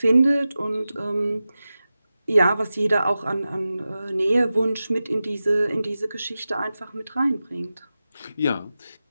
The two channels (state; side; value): inverted; both; correlation -0.94